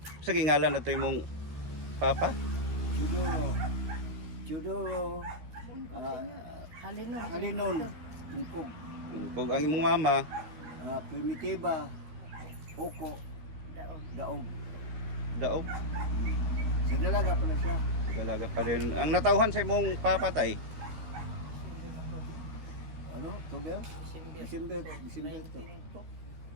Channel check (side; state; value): left; late; 13 ms